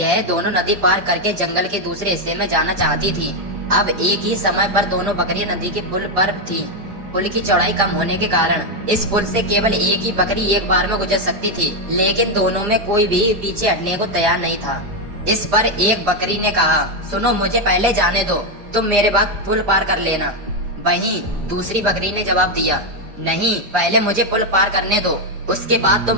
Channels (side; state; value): left; late; 4.9 ms